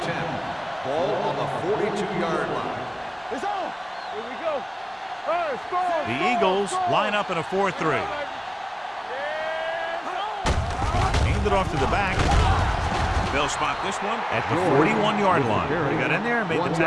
10. Ball on the 42-yard line. It's on. Here we go. All right, score. The Eagles line up in a 4-3. Hand it off to the back. They'll spot this one at the 41-yard line. They got in there and made the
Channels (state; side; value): identical; both; correlation 1.00